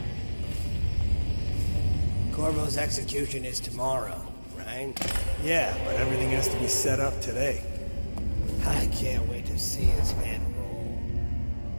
Corvo's execution is tomorrow, right? Yeah, but everything has to be set up today. I can't wait to see his head roll.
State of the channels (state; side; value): inverted; both; correlation -1.00